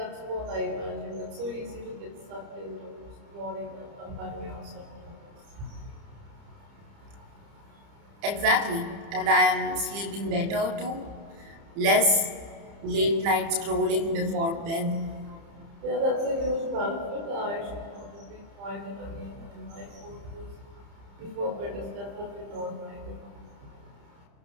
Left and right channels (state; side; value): late; left; 30 ms